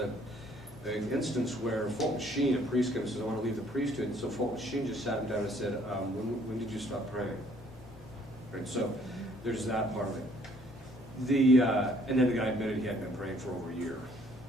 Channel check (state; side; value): noise; left; rumble, 24 dB below the sound